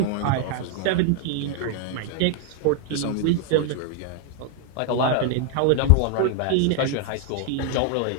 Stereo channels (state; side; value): different; both; correlation 0.00